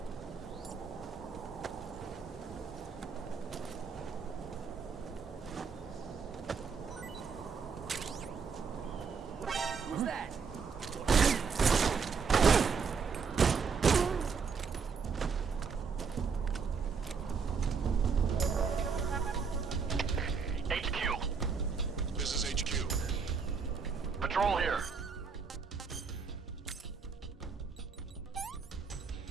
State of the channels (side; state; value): left; quieter; 5.6 dB